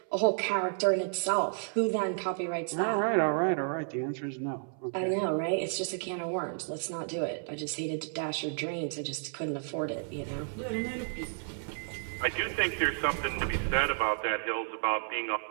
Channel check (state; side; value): silent; left; 57 dB below the other